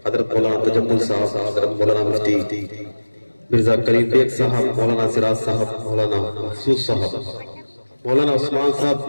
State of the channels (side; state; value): both; inverted; correlation -1.00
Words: हजरत मौलाना तजम्मुल साहब, हजरत मौलाना मुफ्ती मिर्जा करीम बेग साहब, मौलाना सिराज साहब, मौलाना महसूस साहब, मौलाना उस्मान साहब,